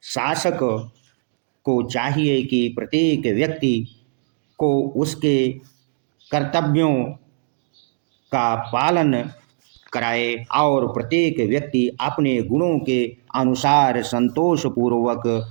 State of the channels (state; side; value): silent; left; digital silence